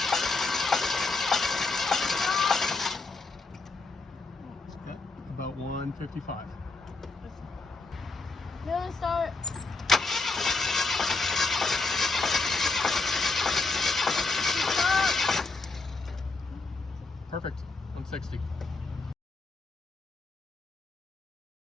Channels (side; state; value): right; quieter; 3.7 dB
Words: Okay. About 155. Amelia, start. Stop. Perfect. 160.